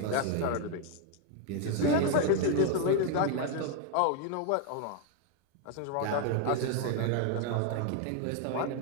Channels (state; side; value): different; both; correlation 0.01